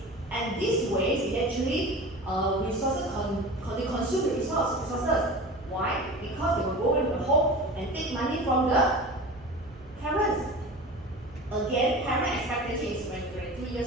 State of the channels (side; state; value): right; noise; hum, 23 dB below the sound